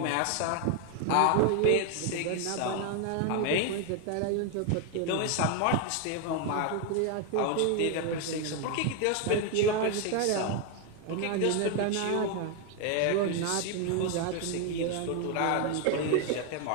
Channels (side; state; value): both; different; correlation 0.01